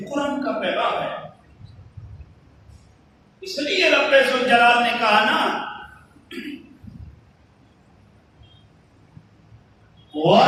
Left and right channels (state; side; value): identical; both; correlation 1.00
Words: قرآن کا پیغام ہے۔ اس لیے رب ذوالجلال نے کہا نا